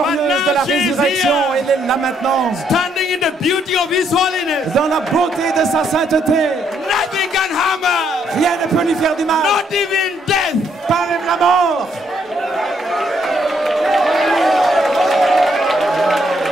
de la résurrection. Elle est là maintenant, standing in the beauty of His holiness. dans la beauté de sa sainteté. Nothing can harm her, Rien ne peut lui faire du mal, not even death. pas même la mort.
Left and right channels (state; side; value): normal; both; correlation 0.71